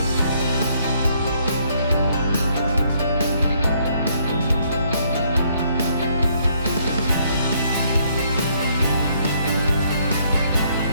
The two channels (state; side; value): inverted; both; correlation -0.68